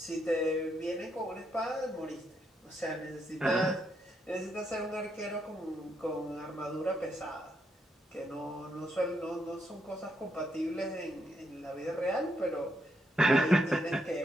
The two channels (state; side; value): normal; both; correlation 0.78